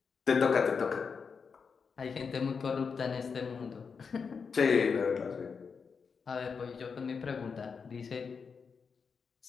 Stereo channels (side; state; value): right; quieter; 5.7 dB